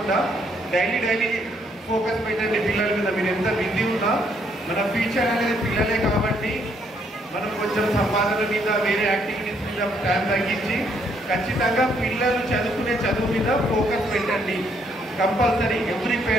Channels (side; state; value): both; normal; correlation 0.70